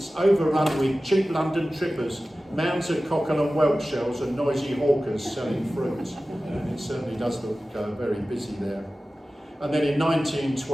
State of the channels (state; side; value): normal; both; correlation 0.96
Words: overrun with cheap London trippers, mounds of cockle and whelk shells and noisy hawkers selling fruit." And it certainly does look very busy there. And then in